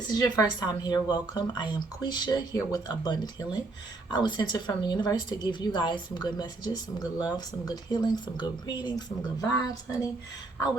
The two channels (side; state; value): left; quieter; 3.3 dB